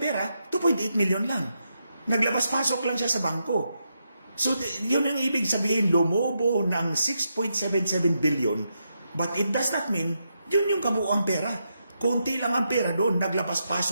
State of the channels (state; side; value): inverted; both; correlation -0.83